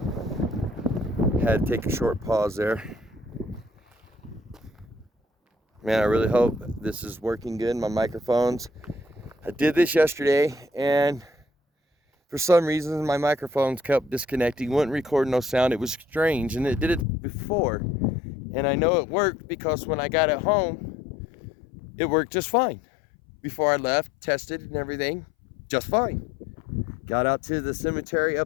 Had to take a short pause there. Man, I really hope this is working good, my microphones. I did this yesterday, and for some reason my microphones kept disconnecting, wouldn't record no sound. It was strange, and it did it before. And I know it worked because when I got it home, it worked just fine. Before I left, tested and everything, just fine. Got out to the cemetery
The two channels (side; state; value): right; drops out; at 17.1 s